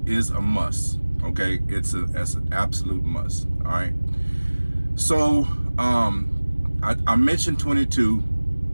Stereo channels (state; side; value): inverted; both; correlation -1.00